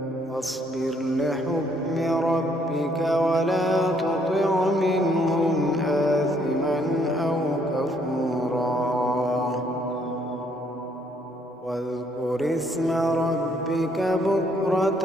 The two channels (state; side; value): normal; both; correlation 0.68